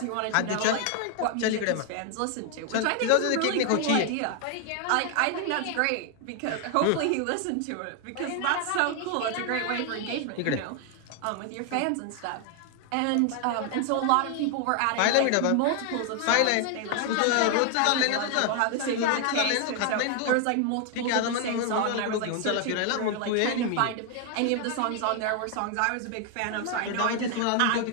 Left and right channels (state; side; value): different; both; correlation 0.00